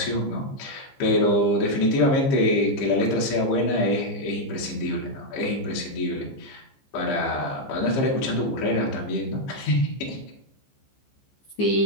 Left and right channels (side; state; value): right; late; 15 ms